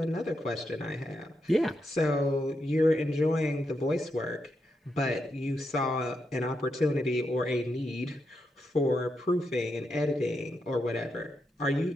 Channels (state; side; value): normal; both; correlation 0.83